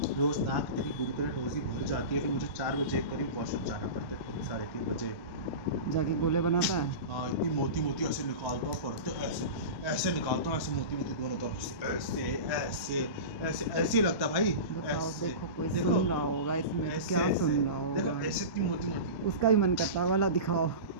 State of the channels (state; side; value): late; right; 1.1 ms